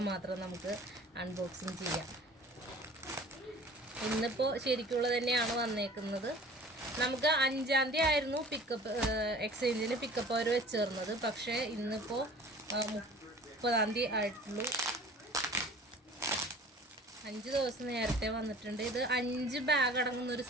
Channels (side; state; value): both; normal; correlation 0.45